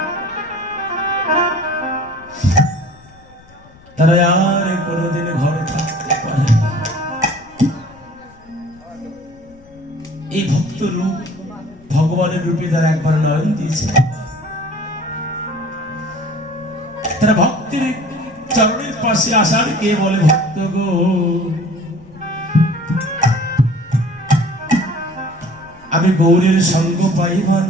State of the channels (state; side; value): noise; left; rumble, 25 dB below the sound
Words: তারা আর কোনোদিন ঘরে থাকতে পারে না। এই ভক্ত রূপ ভগবানের রূপে তারা একবার নয়ন দিয়েছে। তারা ভক্তির চরণের পাশে আসার কে বলে ভক্ত গো, আমি গৌরের সঙ্গ পাই বা